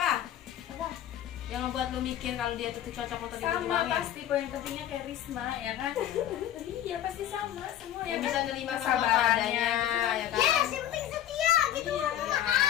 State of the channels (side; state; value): right; quieter; 11.6 dB